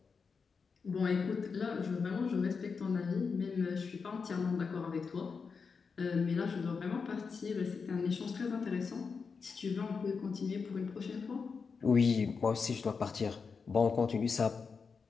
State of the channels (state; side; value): quieter; right; 5.3 dB